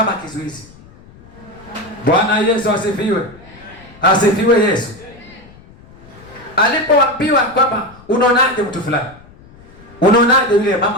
kizuizi. Bwana Yesu asifiwe. Asifiwe Yesu. Alipoambiwa kwamba unaonaje mtu fulani, unaonaje yule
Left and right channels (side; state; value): left; noise; rumble, 23 dB below the sound